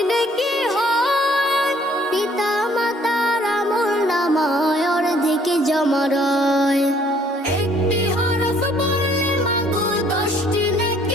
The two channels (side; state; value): both; normal; correlation 0.61